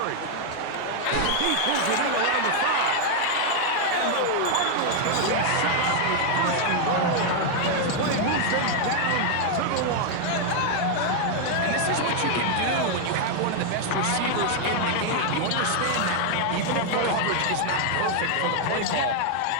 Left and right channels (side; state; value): both; different; correlation 0.00